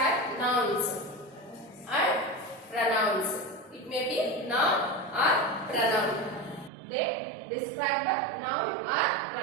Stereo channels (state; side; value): drops out; left; at 6.7 s